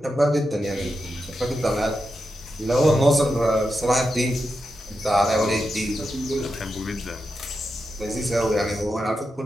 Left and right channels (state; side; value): normal; both; correlation 0.88